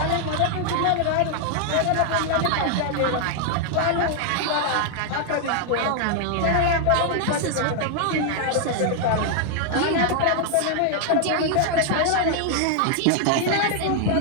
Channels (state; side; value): different; both; correlation 0.00